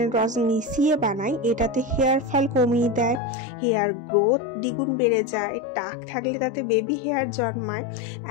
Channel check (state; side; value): drops out; right; at 3.2 s